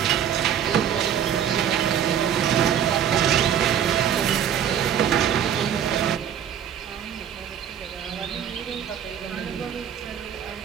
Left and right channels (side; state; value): left; quieter; 9.1 dB